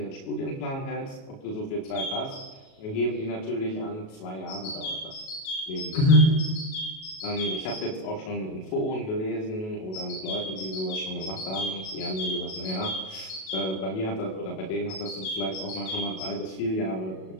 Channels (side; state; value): right; late; 37 ms